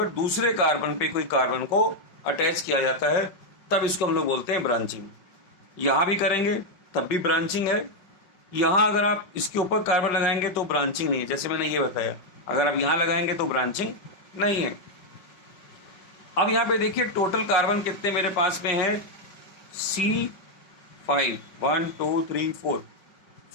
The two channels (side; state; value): right; late; 5.5 ms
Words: दूसरे कार्बन पे कोई कार्बन को अटैच किया जाता है, तब इसको हम लोग बोलते हैं ब्रांचिंग। यहाँ भी करेंगे तब भी ब्रांचिंग है, यहाँ अगर आप इसके ऊपर कार्बन लगाएंगे तो ब्रांचिंग नहीं है, जैसे मैंने ये बताया। अगर आप यहाँ लगाएंगे तो ब्रांचिंग नहीं है। अब यहाँ पे देखिए टोटल कार्बन कितने मेरे पास में है, C5, 1 2 3 4